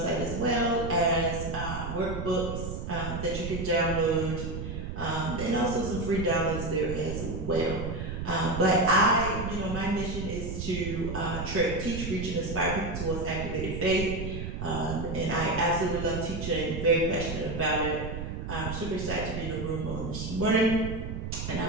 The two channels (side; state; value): right; noise; rumble, 5 dB below the sound